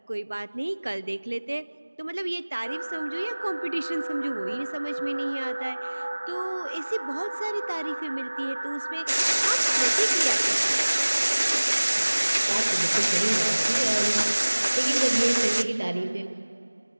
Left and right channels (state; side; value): inverted; both; correlation -1.00